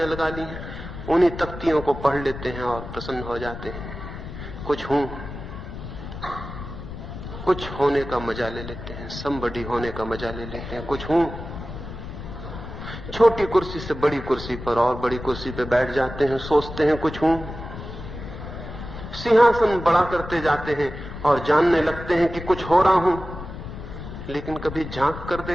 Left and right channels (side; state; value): left; noise; rumble, 10 dB below the sound